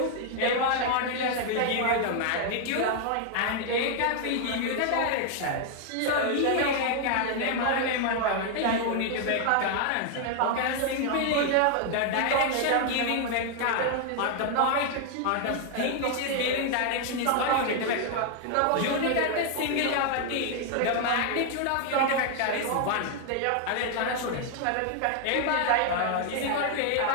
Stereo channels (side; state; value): both; different; correlation 0.00